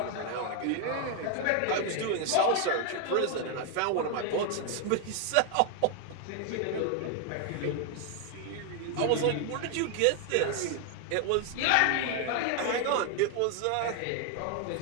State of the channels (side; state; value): both; different; correlation 0.00